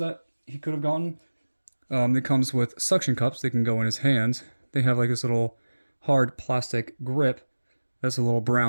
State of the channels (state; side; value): inverted; both; correlation -1.00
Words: he could have gotten. It comes with suction cups. They can go in his hands. They have like this little hard plastic grip that's a little